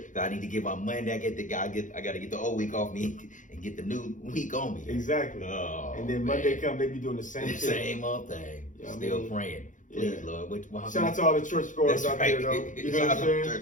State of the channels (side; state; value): right; late; 0.37 ms